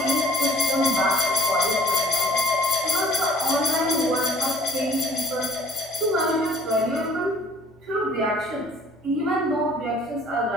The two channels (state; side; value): normal; both; correlation 0.54